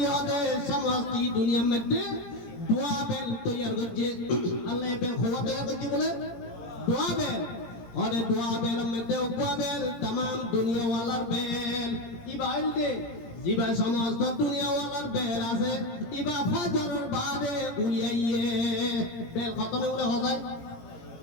ওদের সমস্ত দুনিয়ার মধ্যে দোয়া বেল তৈয়ার করছে আল্লাহ বেল খোয়া তৈয়ার করছে বলে দোয়া বেল ওরে দোয়া বেল মধ্যে দোয়া বেল तमाम দুনিয়া ওয়ালার বেল ইবাইল দে জিবা সমস্ত দুনিয়া ওয়ালার বেল আছে ইবা ফজরের বাদে উলিয়াইয়ে বেল খতমে উলে হয়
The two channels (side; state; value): right; late; 17 ms